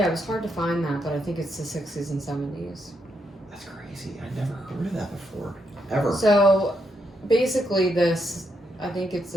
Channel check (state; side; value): normal; both; correlation 0.79